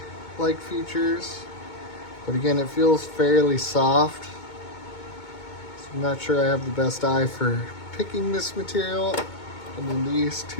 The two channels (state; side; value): late; right; 2.2 ms